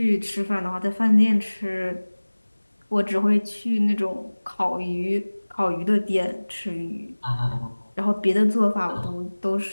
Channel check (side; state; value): both; inverted; correlation -1.00